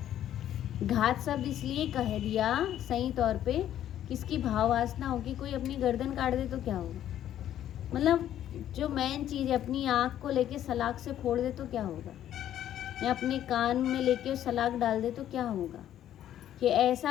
घात शब्द इसलिए कह दिया सही तौर पे, किसकी भाव वासना होगी, कोई अपनी गर्दन काट दे तो क्या होगा? मतलब जो मेन चीज़ है, अपनी आँख को लेके सलाख से फोड़ दे तो क्या होगा, या अपने कान में लेके सलाख डाल दे तो क्या होगा, कि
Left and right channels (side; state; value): right; quieter; 11.4 dB